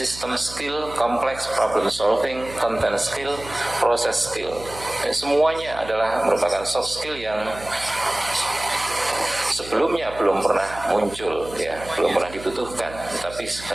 skill, complex problem solving, content skill, process skill. Semuanya adalah merupakan soft skill yang sebelumnya belum pernah muncul, ya, belum pernah dibutuhkan. Tapi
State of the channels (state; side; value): noise; right; hum, 16 dB below the sound